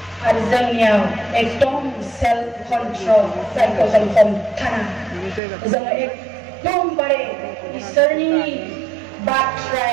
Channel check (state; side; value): drops out; left; at 5.4 s